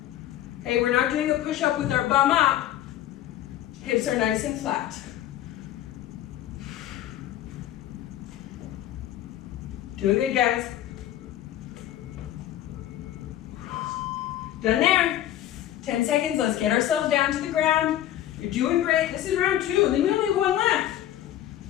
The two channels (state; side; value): quieter; right; 12.5 dB